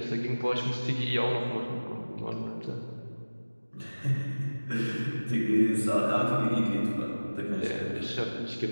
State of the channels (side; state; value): both; inverted; correlation -1.00